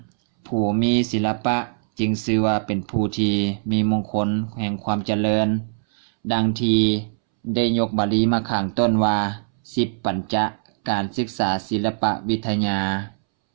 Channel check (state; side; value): silent; left; 64 dB below the other